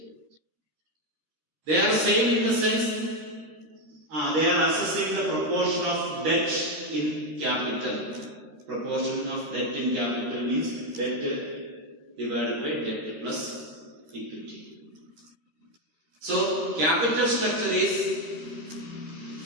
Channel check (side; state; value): left; late; 13 ms